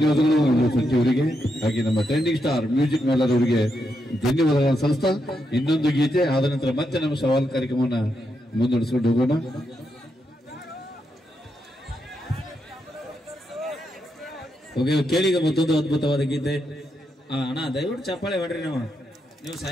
ಸಚಿವರಿಗೆ, ಹಾಗೆ ನಮ್ಮ ಟ್ರೆಂಡಿಂಗ್ ಸ್ಟಾರ್ ಮ್ಯೂಸಿಕ್ ಮೇಲರ್ ಅವರಿಗೆ ಧನ್ಯವಾದಗಳನ್ನು ಸಲ್ಲಿಸ್ತಾ ಇನ್ನೊಂದು ಗೀತೆ ಆದ ನಂತರ ಮತ್ತೆ ನಮ್ಮ ಸವಾಲ್ ಕಾರ್ಯಕ್ರಮವನ್ನ ಮುಂದುವರಿಸಿಕೊಂಡು ಹೋಗೋಣ. ಓಕೆ, ಕೇಳಿಗ ಮತ್ತೊಂದು ಅದ್ಭುತವಾದ ಗೀತೆ. ಅಣ್ಣ ದಯವಿಟ್ಟು ಚಪ್ಪಾಳೆ ಹೊಡ್ರಿ. ನೀವು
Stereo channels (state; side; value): normal; both; correlation 0.83